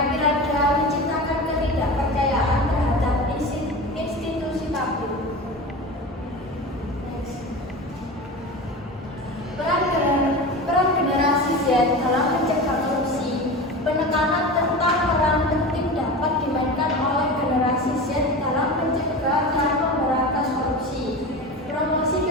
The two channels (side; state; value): both; normal; correlation 0.29